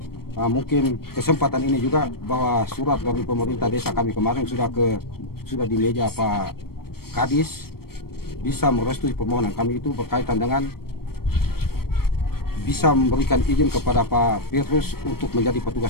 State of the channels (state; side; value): late; right; 0.94 ms